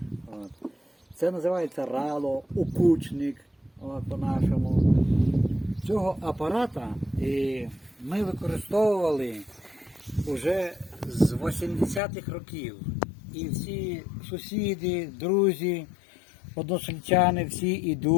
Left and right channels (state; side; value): drops out; right; at 12.0 s